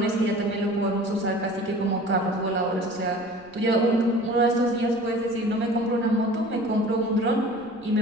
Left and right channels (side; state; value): left; noise; rumble, 29 dB below the sound